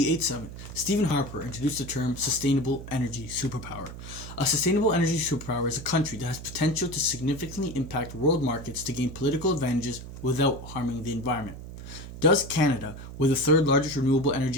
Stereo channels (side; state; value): right; noise; hum, 12 dB below the sound